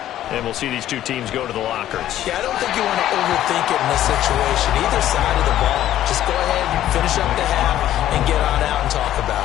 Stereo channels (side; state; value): right; quieter; 12.6 dB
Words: and we'll see these two teams go to the lockers. Yeah, I don't think you want to overthink it in this situation. Either side of the ball. Just go ahead and finish up the half and get on out and talk